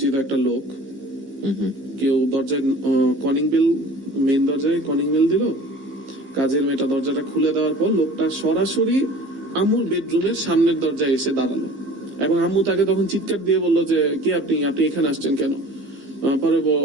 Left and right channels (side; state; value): left; late; 15 ms